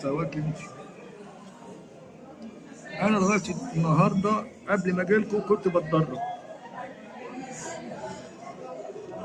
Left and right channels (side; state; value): both; identical; correlation 1.00